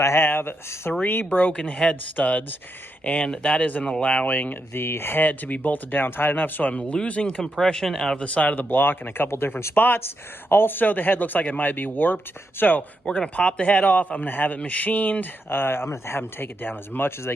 I have 3 broken head studs, and that isn't allowing the head to be bolted down tight enough, so I'm losing compression out of the side of the block in a couple different spots. Also, the head looks like it might be warped, so we're going to pop the head off. I'm going to have it machined. I'm going to have them take it down as much as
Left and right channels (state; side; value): normal; both; correlation 0.83